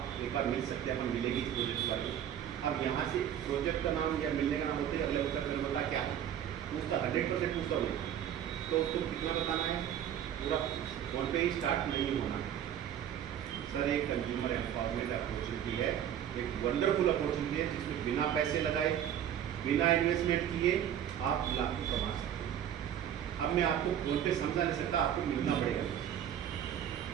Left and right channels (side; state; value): left; quieter; 10.0 dB